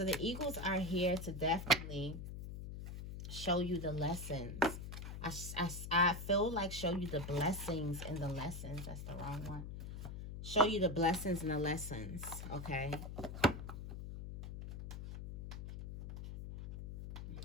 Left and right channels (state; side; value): noise; left; hum, 8 dB below the sound